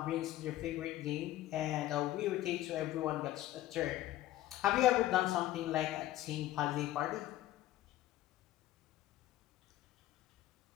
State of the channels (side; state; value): right; quieter; 14.6 dB